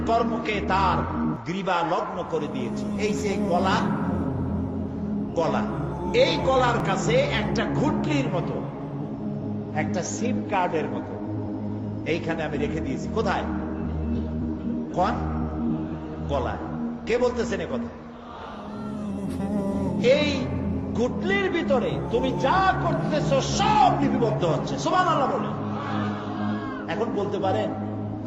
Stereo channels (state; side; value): identical; both; correlation 1.00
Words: কর্মকে তার গ্রীবা লগ্ন করে দিয়েছি। এই যে গলা, গলা, এই গলার কাছে একটা ঘুটলির মতো, একটা সিম কার্ডের মতো এইখানে আমি রেখে দিয়েছি। কোথায়? কোন গলায়? কে বলতেছেন এ কথা? এই ঘুটলির ভিতরে তুমি যা করতেছো সব লিপিবদ্ধ হচ্ছে। সুবহানাল্লাহ বলেন। এখন বলতে পারেন